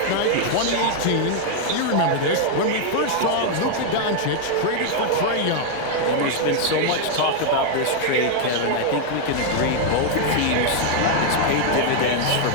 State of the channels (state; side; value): different; both; correlation 0.00